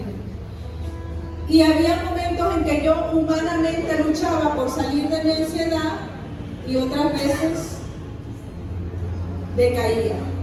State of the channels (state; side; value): identical; both; correlation 1.00